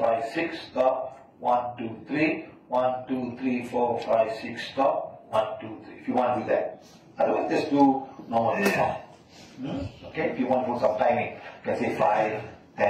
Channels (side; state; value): both; identical; correlation 1.00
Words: 6, stop. 1, 2, 3, 1, 2, 3, 4, 5, 6, stop. 1, 2, 3. If you want to do that. Otherwise, just do normal count. Okay, if you want to put some timing, you can say 5,